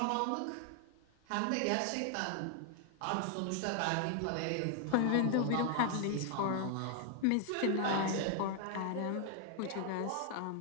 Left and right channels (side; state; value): both; different; correlation 0.00